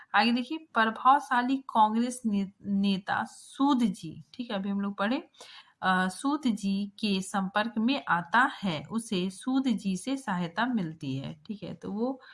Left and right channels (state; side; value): identical; both; correlation 1.00